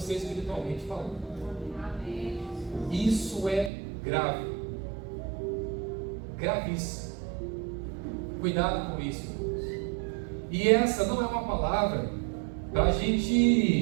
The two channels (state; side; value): drops out; left; at 3.7 s